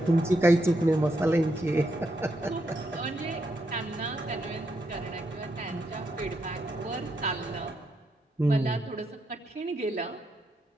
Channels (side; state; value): both; normal; correlation 0.80